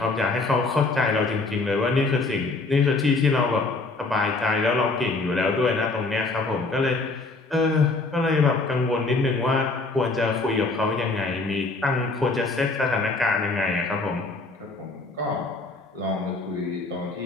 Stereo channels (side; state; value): right; quieter; 3.5 dB